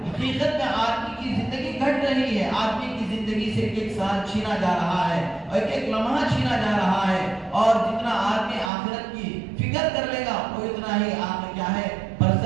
حقیقت میں آدمی کی زندگی گھٹ رہی ہے، آدمی کی زندگی سے ایک سال چھینا جا رہا ہے اور ایک لمحہ چھینا جا رہا ہے، اور جتنا آدمی آخرت کی فکر کر لے گا وہ اتنا ہی آگے کیا ہے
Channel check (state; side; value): drops out; left; at 8.7 s